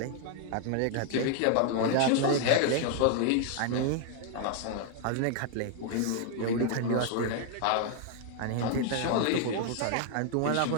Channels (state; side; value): different; both; correlation 0.00